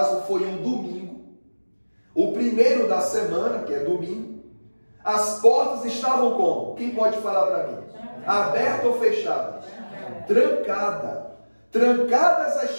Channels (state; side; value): inverted; both; correlation -1.00